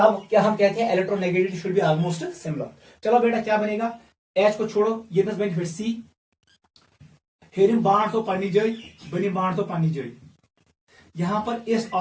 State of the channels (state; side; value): identical; both; correlation 1.00